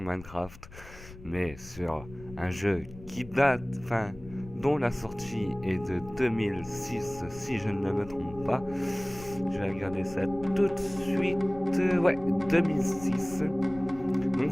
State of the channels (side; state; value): left; noise; rumble, 17 dB below the sound